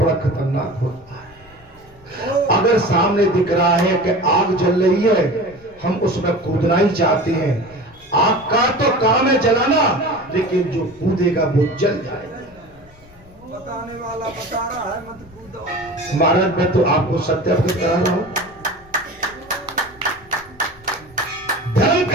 खतरनाक होता है। अगर सामने दिख रहा है कि आग जल रही है, हम उसमें कूदना ही चाहते हैं। आग का तो काम है जलाना, लेकिन जो कूदेगा वो जल जाएगा। बताने वाला बता रहा है मत कूदो। महाराज मैं तो आपको सत्य अवगत करा रहा हूं। धर्म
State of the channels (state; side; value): noise; left; rumble, 25 dB below the sound